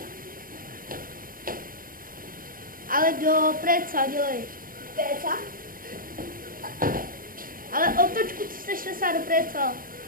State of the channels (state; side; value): late; left; 0.41 ms